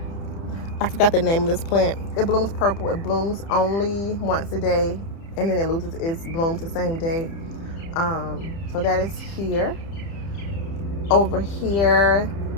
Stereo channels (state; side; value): late; right; 30 ms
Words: I forgot the name of this plant. It blooms purple. It blooms only once a day, and then it loses its blooms the same day. So that is here. Over here,